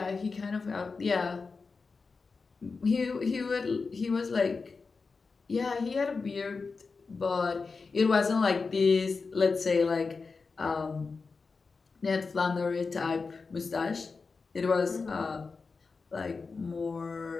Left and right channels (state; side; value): quieter; right; 4.5 dB